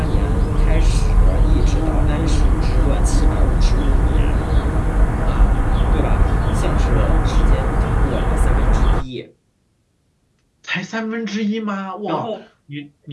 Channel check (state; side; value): identical; both; correlation 1.00